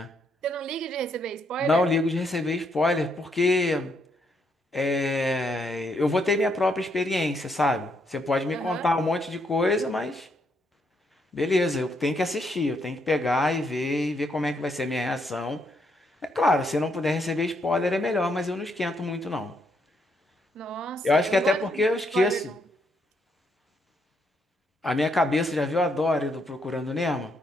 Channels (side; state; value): both; normal; correlation 0.75